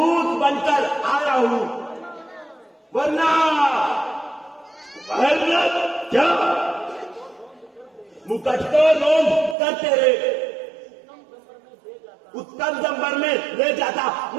बनकर आया हूं, वरना क्या मुकट को लोग करते रहे उत्तम दंबर में ले जाता,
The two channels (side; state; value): left; drops out; at 9.6 s